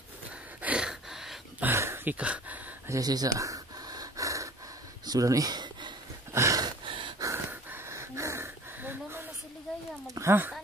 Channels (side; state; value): both; normal; correlation 0.46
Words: Kika. Asa. Sudah ni. Ha?